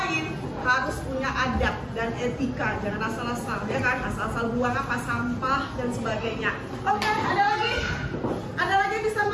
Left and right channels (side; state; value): both; identical; correlation 1.00